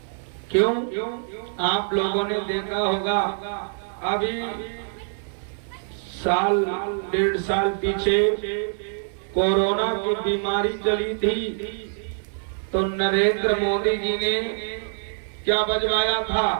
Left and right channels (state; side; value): silent; left; 60 dB below the other